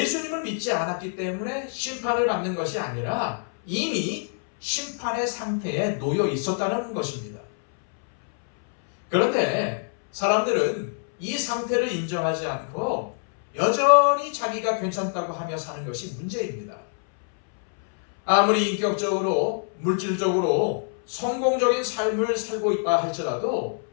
믿지 않았기 때문에 심판을 받는 것이 아니라 이미 심판의 상태에 놓여 있었다는 것입니다. 그런데 사람들은 이 상태를 인정하지 않고 여전히 자기가 괜찮다고 하며 사는 것이 문제입니다. 아무리 인격적으로, 물질적으로 성공적인 삶을 살고 있다 할지라도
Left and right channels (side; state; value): right; silent; 62 dB below the other